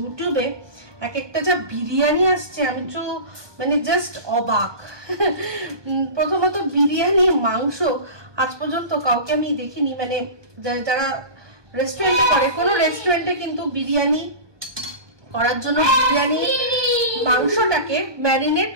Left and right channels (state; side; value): late; left; 1.2 ms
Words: এক একটা যা বিরিয়ানি আসছে আমি তো মানে জাস্ট অবাক। প্রথমত বিরিয়ানি মাংস আজ পর্যন্ত কাউকে আমি দেখিনি, মানে যারা রেস্টুরেন্টে করে, কোনো রেস্টুরেন্টে কিন্তু বিরিয়ানি করার জন্য বিরিয়ানি মাংসটাকে ম্যারিনেট